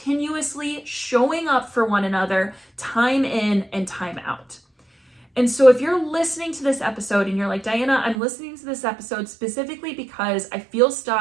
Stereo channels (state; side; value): drops out; left; at 8.2 s